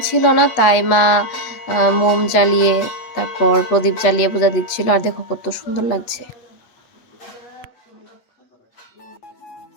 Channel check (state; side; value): late; right; 8.3 ms